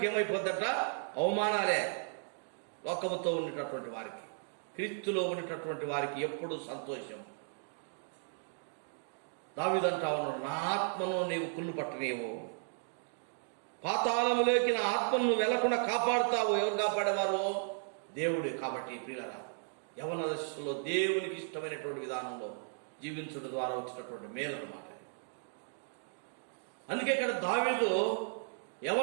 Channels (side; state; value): left; silent; digital silence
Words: ఏమైపోద్దట, అవమానాలే. లోకముతో ఉండేటటువంటి వారికి, క్రీస్తులో ఉండేటటువంటి వారికి ఎప్పుడు సంతోషం. దావీదు అంటా ఉన్నాడు, నా ఆత్మను నీవు కుళ్ళు పట్టనీవు, పాతాళములోకి నా ఆత్మను నువ్వు వెళ్లకుండా కాపాడుతావు. ఎవరు కాపాడేవారు? దేవుడు. కాబట్టి ప్రియులారా, యవన దశలో దేవునికి ఇష్టమైనటువంటి విధానంలో జీవించడం ద్వారా వచ్చినటువంటి మేలు అన్నమాట. అందుకే ఇక్కడ దావీదు